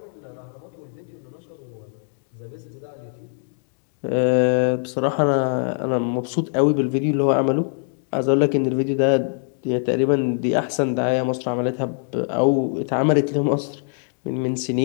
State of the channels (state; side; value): silent; right; digital silence